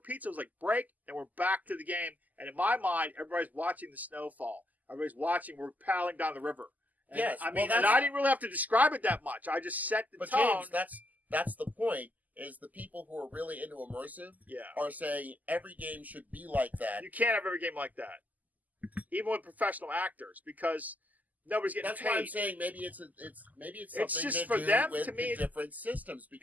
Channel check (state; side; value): late; left; 0.080 ms